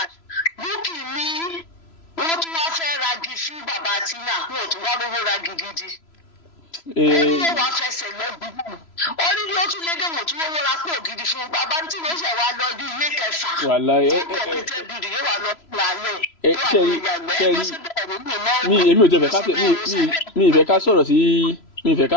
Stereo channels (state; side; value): late; right; 3.0 ms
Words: Bukki ní wọ́n tún wá fẹ́ ragi fún bàbá Tina wọn ò tún wá lówó ragi gidi. Ó ní wọ́n wá fẹsẹ̀ lọ́gbùn ó ní yóò tún lédè wọ́n tún wọ́n ra pò gidi fún bàbá tí wọ́n ṣẹ̀ wá lọ bí ilé kẹfà. Kọ̀pútẹ́ bìrì yóò wá lọ lálẹ́ èmi ò tẹ̀ mi ìfẹ́ ká